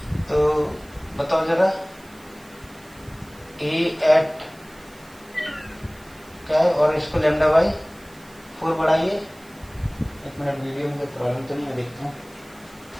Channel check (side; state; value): right; noise; hiss, 25 dB below the sound